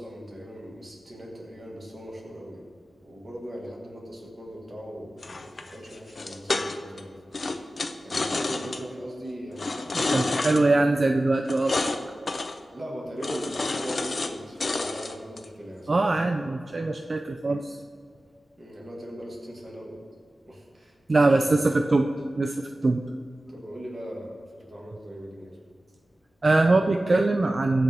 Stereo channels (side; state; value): both; normal; correlation 0.95